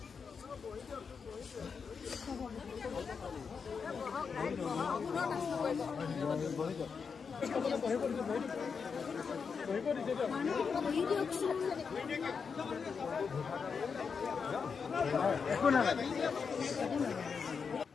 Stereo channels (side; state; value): right; quieter; 5.8 dB